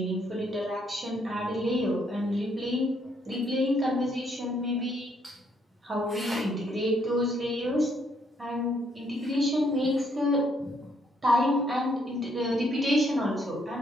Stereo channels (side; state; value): both; normal; correlation 0.71